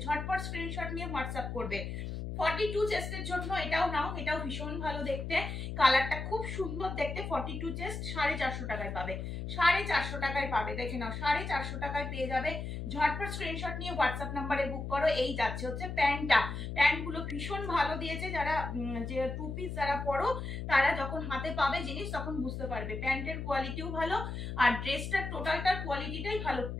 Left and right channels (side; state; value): left; noise; hum, 5 dB below the sound